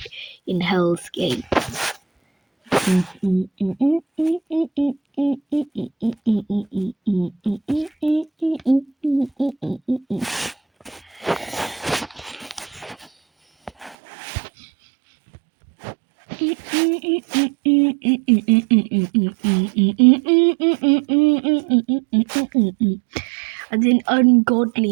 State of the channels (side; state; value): left; drops out; at 14.0 s